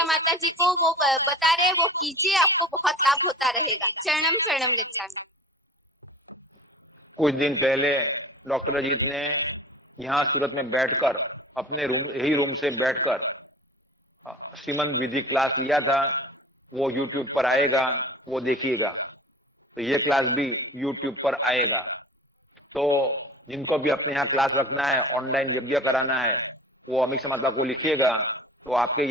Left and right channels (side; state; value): both; normal; correlation 0.40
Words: माता जी को, वो बता रहे, वो कीजिए, आपको बहुत लाभ होता रहेगा। शरणम शरणम गच्छामि। कुछ दिन पहले डॉक्टर अजीत ने यहाँ सूरत में बैठकर अपने यही रूम से बैठकर श्रीमंत विधि क्लास लिया था। वो यूट्यूब पर आएगा, वो देखिएगा। तो ये क्लास भी यूट्यूब पर आएगा। तो जिनको भी अपने यहाँ क्लास रखना है, ऑनलाइन यज्ञ कराना है, वो अमीषा माता को लिखिएगा। तो आपके